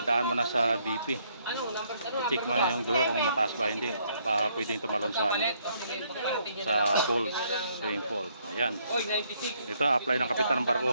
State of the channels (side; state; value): both; inverted; correlation -0.69